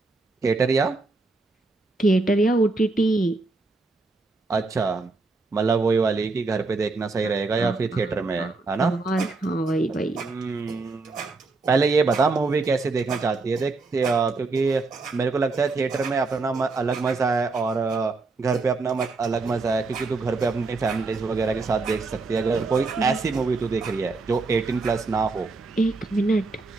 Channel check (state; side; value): quieter; left; 3.7 dB